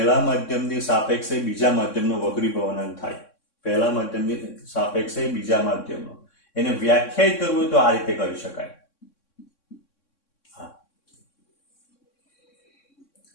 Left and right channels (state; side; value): late; right; 3.6 ms